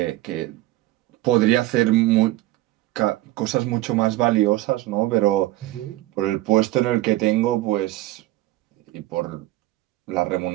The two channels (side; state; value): left; quieter; 17.0 dB